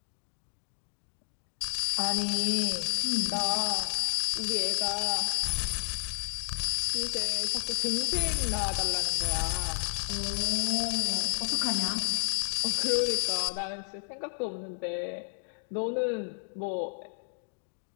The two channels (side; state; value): right; silent; digital silence